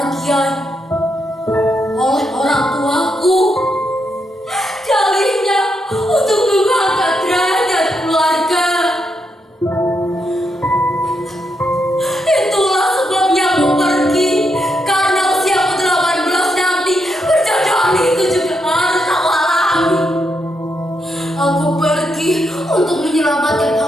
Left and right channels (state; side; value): normal; both; correlation 0.81